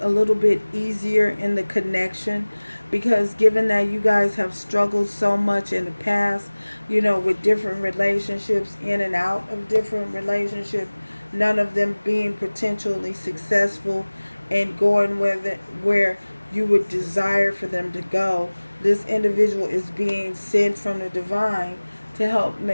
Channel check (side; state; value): both; inverted; correlation -1.00